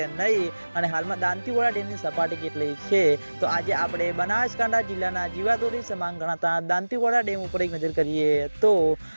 नहीं अने हालमां दांतीवाड़ा डेमनी सपाटी केटली छे। तो आज आपणे बनासकांठा जिल्लाना जीवादोरी समान गणाता दांतीवाड़ा डेम पर एक नजर करिए तो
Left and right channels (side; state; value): both; inverted; correlation -1.00